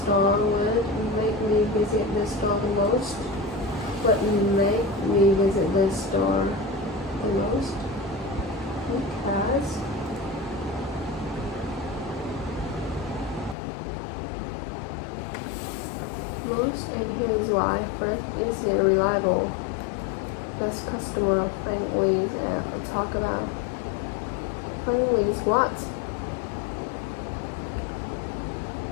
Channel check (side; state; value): right; drops out; at 13.6 s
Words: would make me visit the store the most? What make me visit the store the most? Because most, and here is why. First, is it reliable? Does customer friendly talk about friendly is what?